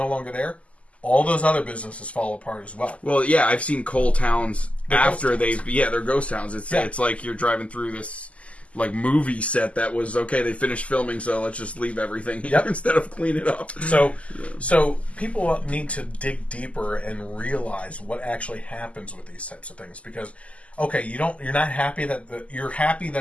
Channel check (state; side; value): late; right; 0.064 ms